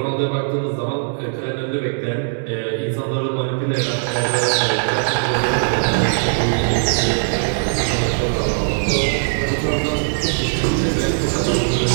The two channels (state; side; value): silent; left; 63 dB below the other